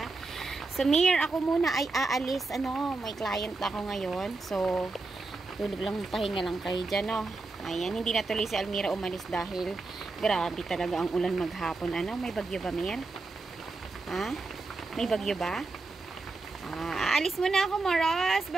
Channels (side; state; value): left; quieter; 3.6 dB